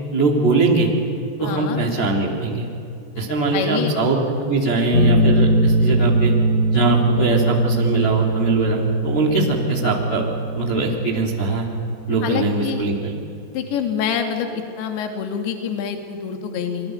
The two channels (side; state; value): right; late; 14 ms